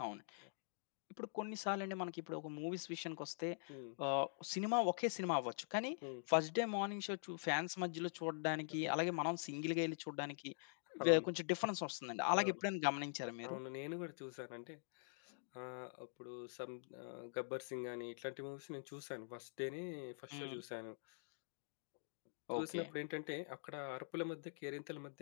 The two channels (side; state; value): right; silent; digital silence